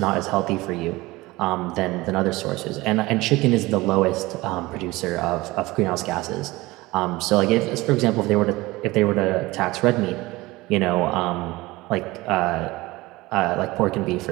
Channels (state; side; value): quieter; left; 20.4 dB